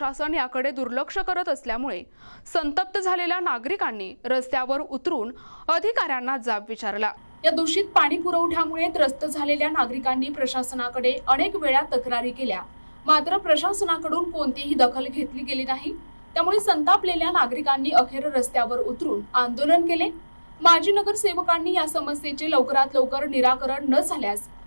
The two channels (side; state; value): both; inverted; correlation -1.00